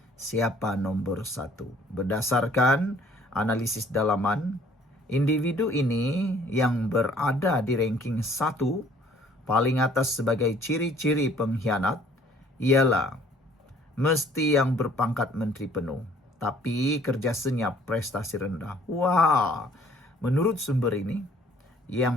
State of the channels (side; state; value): both; normal; correlation 0.57